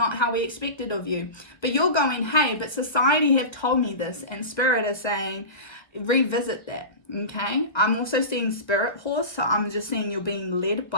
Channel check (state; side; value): late; right; 1.3 ms